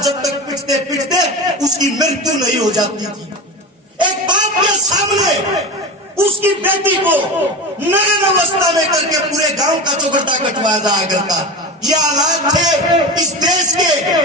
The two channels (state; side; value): normal; both; correlation 0.25